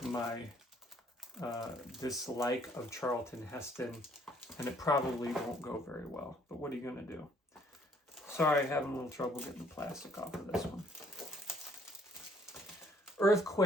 my dislike of Charlton Heston, and it probably won't go very well. But what are you going to do? Sorry, having a little trouble getting the plastic off of this one.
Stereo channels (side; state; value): both; normal; correlation 0.63